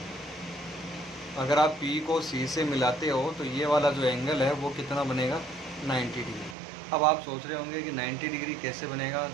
अगर आप पी को सी से मिलाते हो तो ये वाला जो एंगल है वो कितना बनेगा, 90 डिग्री। अब आप सोच रहे होंगे कि 90 डिग्री कैसे बनेगा,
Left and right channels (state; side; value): drops out; left; at 6.6 s